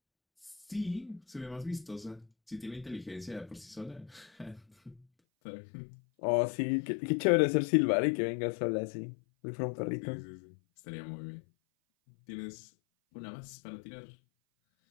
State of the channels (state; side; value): drops out; right; at 5.1 s